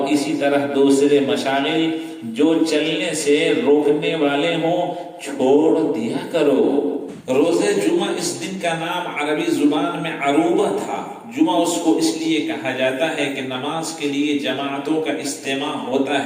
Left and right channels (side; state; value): both; identical; correlation 1.00